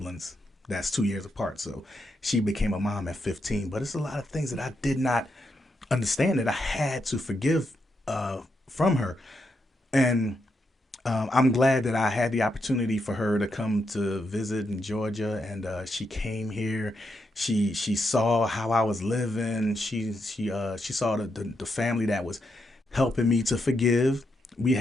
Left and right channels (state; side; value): normal; both; correlation 0.82